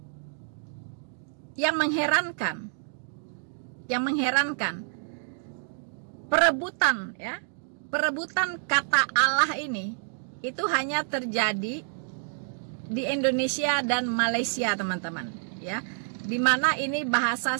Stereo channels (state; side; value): silent; left; digital silence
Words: yang mengherankan, perebutan kata Allah ini itu hanya terjadi di Indonesia dan Malaysia teman-teman ya, dimana ini bahasa